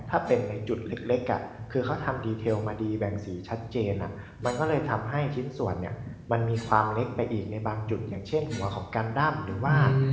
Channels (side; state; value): both; identical; correlation 1.00